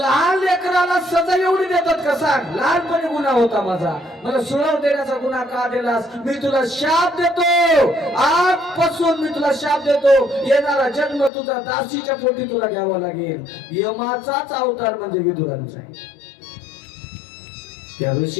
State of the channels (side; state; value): right; drops out; at 11.3 s